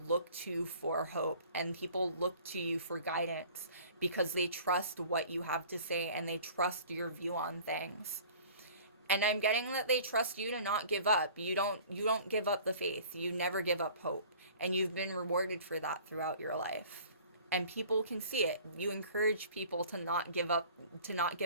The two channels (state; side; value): inverted; both; correlation -0.47